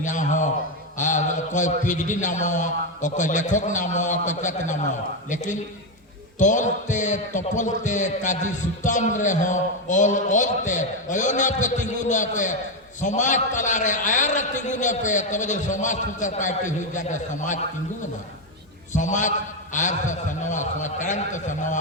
यहाँ हो कोई पीएचडी नामवा कोई लेखक नामवा कोई कत नामवा लेकिन तोलते तपलते काजी सुताम रे हो ओलते ओयोना पे तिंगुना पे समाज तला रे आयर तिंगुना पे तबे जो समाज सुतर पार्टी हुई जाके समाज तिंगुना समाज आयर से सनवा समाज करंट से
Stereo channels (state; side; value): normal; both; correlation 0.07